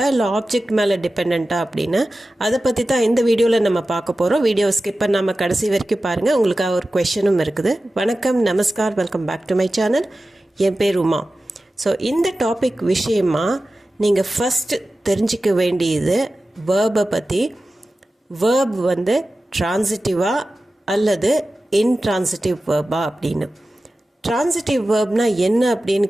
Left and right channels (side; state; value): both; normal; correlation 0.95